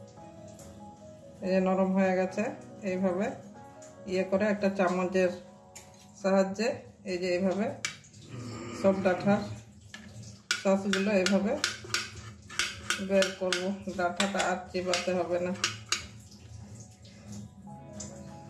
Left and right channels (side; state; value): both; identical; correlation 1.00